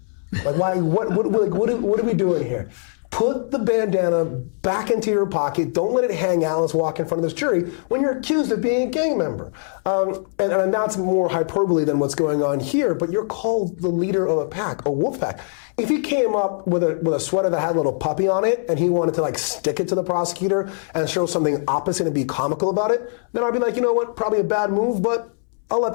Like, why? What are we doing here? Put the bandana back into your pocket. Don't let it hang out. Let's walk in front of this jury when you're accused of being a gang member. And that's more hyperbole than what's going on here, but you're called the leader of a pack, a wolf pack. If he came up with a sweater that had a little puppy on it and he wanted to stick it to the prosecutor and show something opposite and be comical about it, then I'd be like, you know what, probably a bad move, but I'll let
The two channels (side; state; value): right; silent; 64 dB below the other